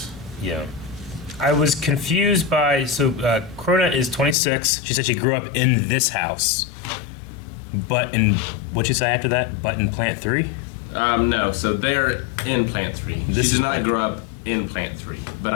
Yeah. I was confused by, Krona is 26. She said she grew up in this house. But what'd you say after that? But in Plant 3? no. So they're in Plant 3. This She is did not Plant- grow up in Plant 3, but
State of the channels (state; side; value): drops out; right; at 4.4 s